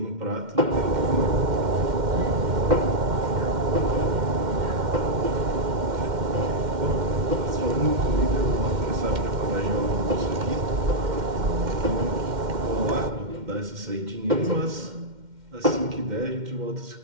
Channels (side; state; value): left; late; 2.1 ms